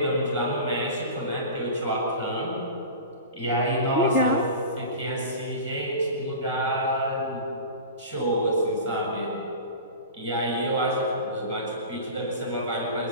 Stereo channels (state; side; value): inverted; both; correlation -0.33